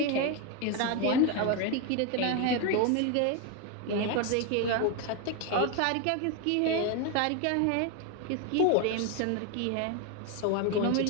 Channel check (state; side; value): different; both; correlation 0.02